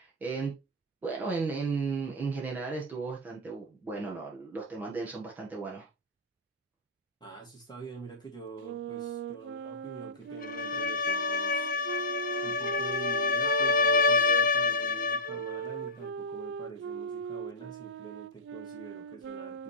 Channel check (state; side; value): normal; both; correlation -0.09